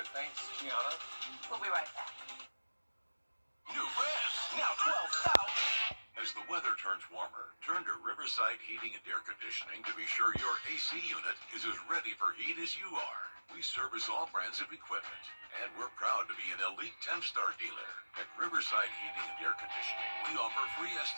Thanks, Gianna. We'll be right back. New ramps, now 12,000. As the weather turns warmer, turn to Riverside Heating and Air Conditioning to be sure your AC unit is as ready for heat as you are. We service all brands of equipment, and we're proud to be an elite 10-star dealer. At Riverside Heating and Air Conditioning, we offer free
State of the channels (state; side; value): inverted; both; correlation -1.00